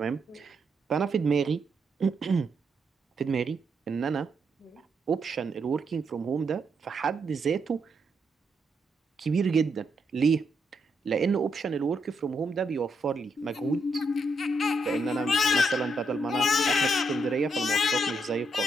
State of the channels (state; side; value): normal; both; correlation 0.78